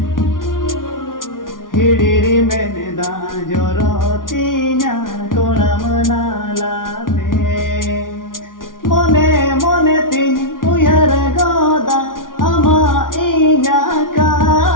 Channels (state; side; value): late; right; 0.89 ms